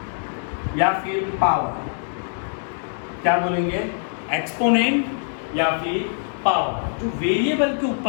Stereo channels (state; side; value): silent; right; digital silence